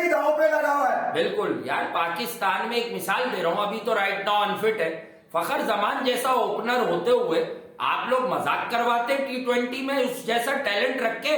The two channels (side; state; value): both; identical; correlation 1.00